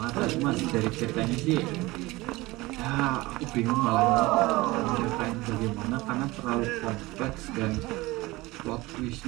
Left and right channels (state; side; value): quieter; left; 20.7 dB